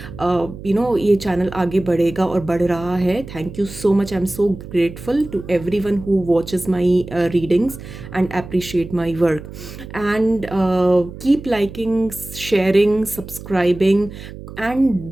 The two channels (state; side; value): noise; right; hum, 13 dB below the sound